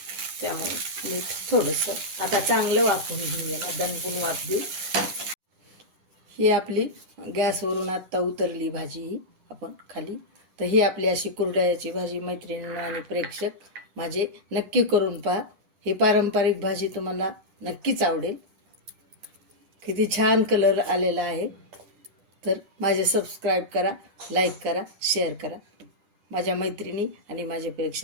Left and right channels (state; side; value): late; left; 9.8 ms